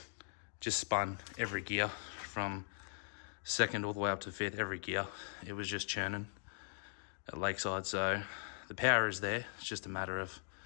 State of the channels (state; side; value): silent; right; digital silence